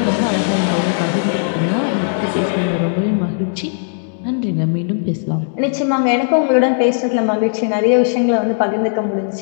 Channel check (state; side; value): silent; right; digital silence